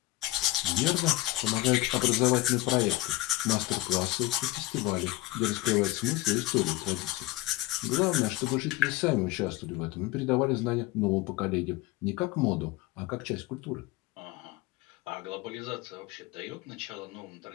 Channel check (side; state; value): right; quieter; 18.4 dB